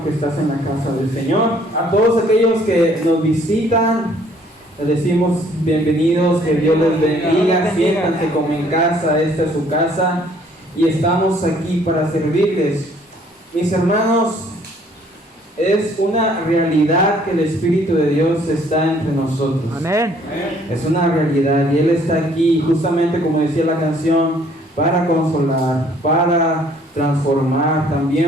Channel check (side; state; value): both; normal; correlation 0.61